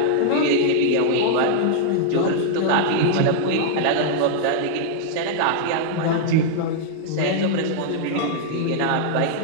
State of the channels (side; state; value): both; different; correlation -0.01